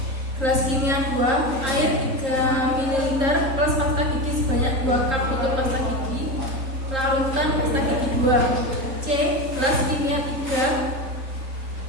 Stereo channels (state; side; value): late; left; 3.8 ms